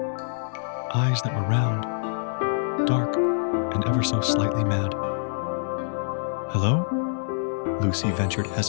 Eyes that were round, dark, and ever so slightly mad. "Hello?" Lucy ventured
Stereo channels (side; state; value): right; silent; digital silence